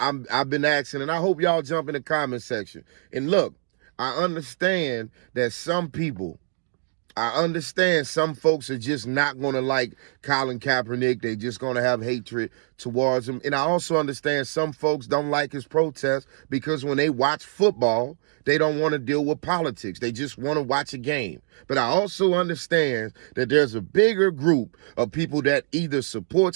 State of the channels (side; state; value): left; silent; digital silence